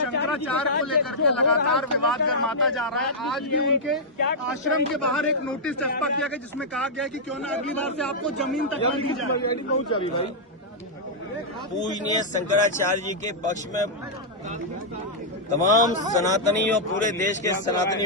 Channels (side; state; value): both; normal; correlation -0.08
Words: को लेकर के लगातार विवाद गर्माता जा रहा है। आज भी उनके आश्रम के बाहर एक नोटिस चस्पा किया गया जिसमें कहा गया कि क्यों ना अगली बार से आपको जमीन तक न दी जाए। पूजनीय शंकराचार्य जी के पक्ष में तमाम सनातनी और पूरे देश के सनातनी